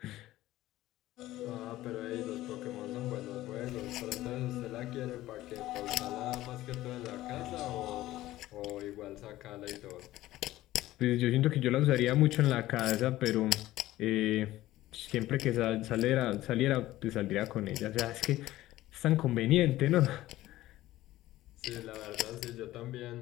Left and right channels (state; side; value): quieter; right; 15.7 dB